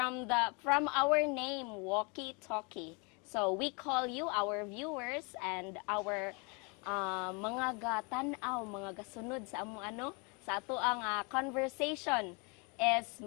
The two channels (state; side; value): quieter; right; 32.5 dB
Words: our name, Walkie Talkie. So we call you, our viewers, and our mga gatanaw, mga gasunod sa among sa ato ang conversation is